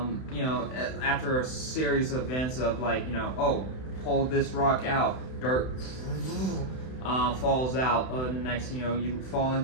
a series of events of pull this rock out, dirt falls out, and next you fall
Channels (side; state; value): right; late; 31 ms